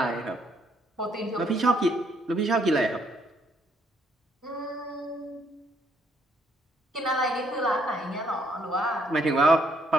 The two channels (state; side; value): normal; both; correlation 0.69